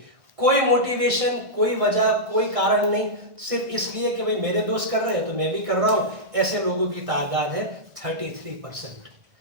کوئی موٹیویشن، کوئی وجہ، کوئی کارن نہیں، صرف اس لیے کہ بھئی میرے دوست کر رہے ہیں تو میں بھی کر رہا ہوں. ایسے لوگوں کی تعداد ہے 33%.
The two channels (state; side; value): late; left; 1.6 ms